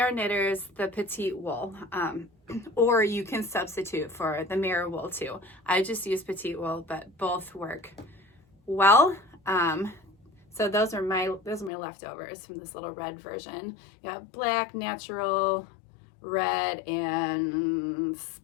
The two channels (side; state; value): right; drops out; at 11.7 s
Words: Knitters, the Petite wool, or you can substitute for the mirror wool too. I just use Petite wool, but both work well. So those are my leftovers from this little red version. You got black, natural, red, and